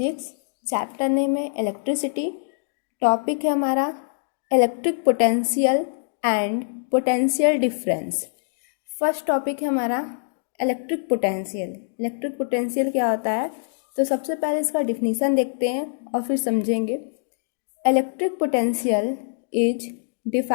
chapter name है इलेक्ट्रिसिटी। टॉपिक है हमारा electric potential and potential difference. First topic है हमारा इलेक्ट्रिक पोटेंशियल। इलेक्ट्रिक पोटेंशियल क्या होता है, तो सबसे पहले इसका डिफिनीसन देखते हैं और फिर समझेंगे। Electric potential is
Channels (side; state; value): right; silent; digital silence